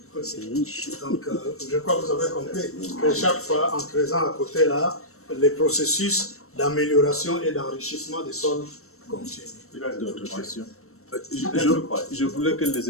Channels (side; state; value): right; late; 0.63 ms